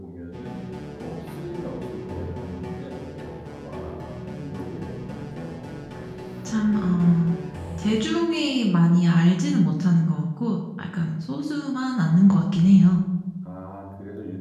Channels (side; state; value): both; identical; correlation 1.00